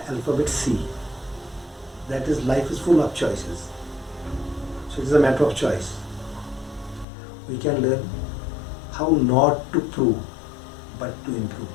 alphabet C, that is life is full of choices. So it is a matter of choice. We can learn how not to prove but to improve.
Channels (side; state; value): right; drops out; at 7.1 s